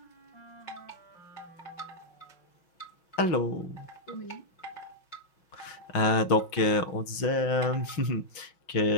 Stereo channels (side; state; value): right; late; 5.6 ms